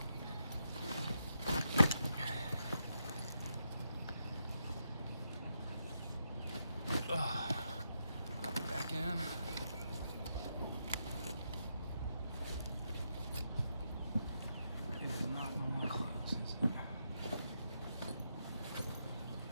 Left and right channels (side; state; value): both; inverted; correlation -0.83